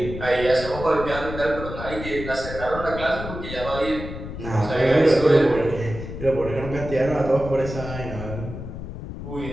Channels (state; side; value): noise; left; rumble, 9 dB below the sound